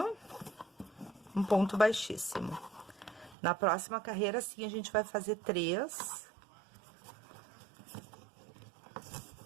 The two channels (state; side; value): drops out; left; at 3.4 s